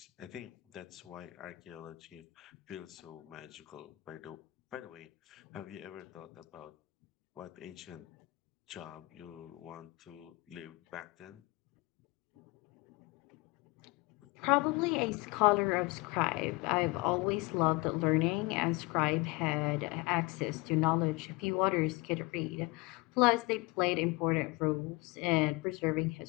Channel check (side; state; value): right; quieter; 23.8 dB